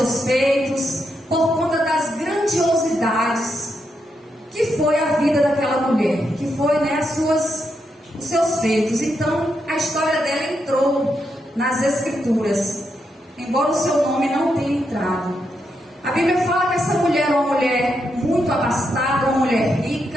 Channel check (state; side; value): normal; both; correlation 0.82